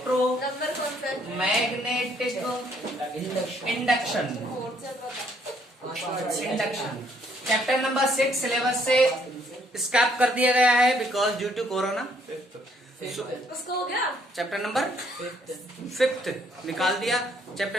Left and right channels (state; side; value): normal; both; correlation 0.67